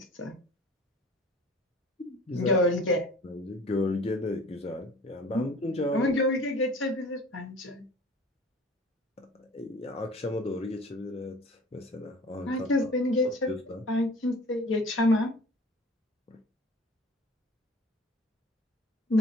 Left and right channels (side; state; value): both; normal; correlation 0.45